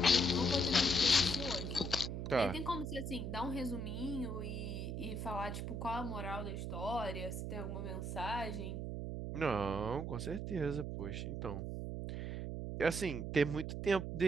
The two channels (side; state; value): right; noise; hum, 3 dB below the sound